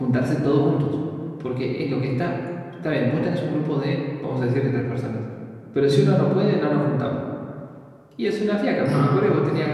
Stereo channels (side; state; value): both; identical; correlation 1.00